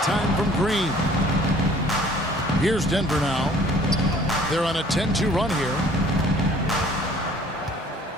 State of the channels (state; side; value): normal; both; correlation 0.54